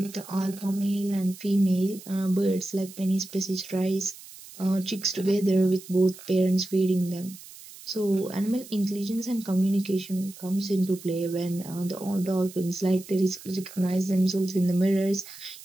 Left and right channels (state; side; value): noise; right; hiss, 17 dB below the sound